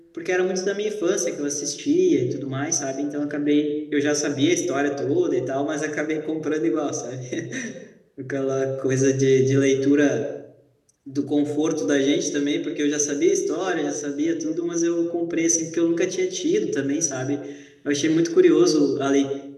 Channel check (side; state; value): both; identical; correlation 1.00